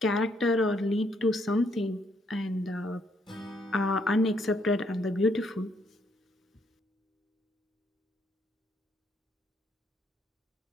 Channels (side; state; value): both; normal; correlation 0.71